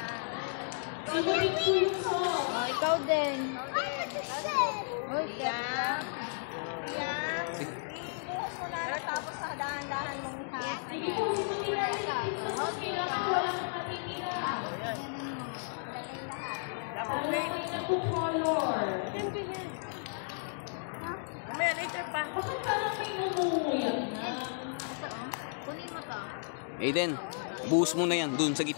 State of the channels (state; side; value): silent; right; digital silence